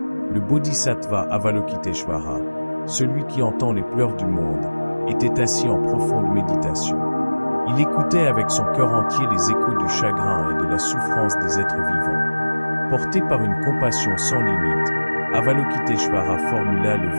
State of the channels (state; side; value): inverted; both; correlation -1.00